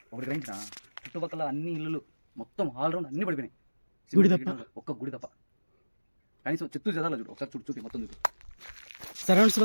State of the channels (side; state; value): both; inverted; correlation -1.00